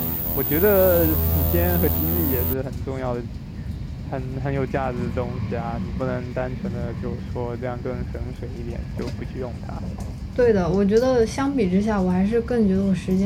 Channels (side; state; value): both; identical; correlation 1.00